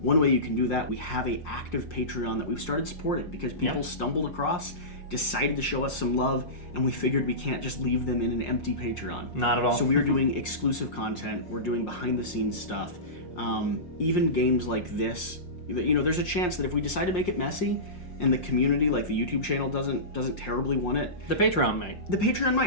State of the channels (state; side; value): late; right; 5.6 ms